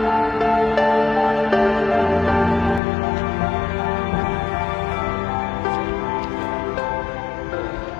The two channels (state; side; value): drops out; right; at 2.8 s